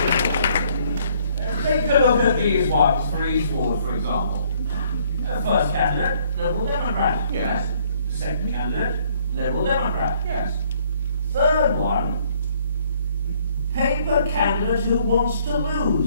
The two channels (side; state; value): both; inverted; correlation -0.63